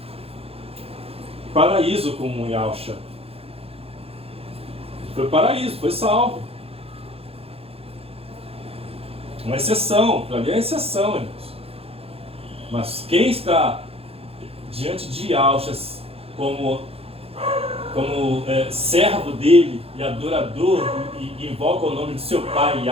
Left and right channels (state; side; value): late; left; 0.28 ms